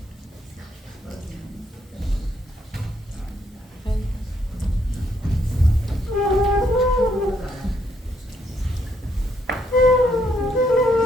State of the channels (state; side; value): normal; both; correlation 0.73